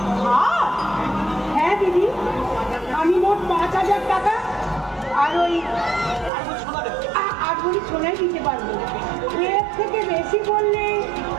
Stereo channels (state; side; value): drops out; left; at 6.3 s